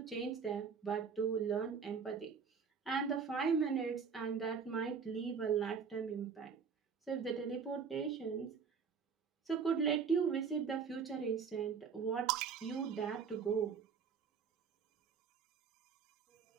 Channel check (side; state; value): left; quieter; 6.1 dB